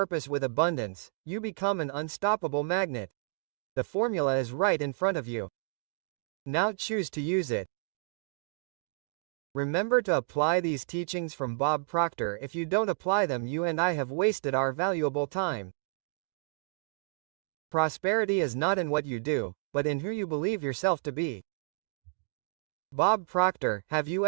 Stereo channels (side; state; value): left; silent; digital silence